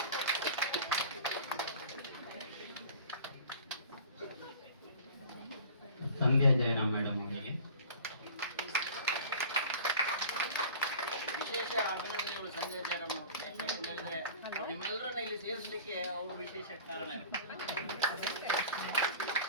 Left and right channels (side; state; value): both; inverted; correlation -0.43